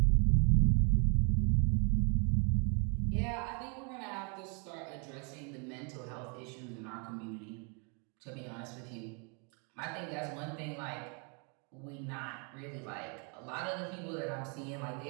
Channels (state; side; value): quieter; left; 36.0 dB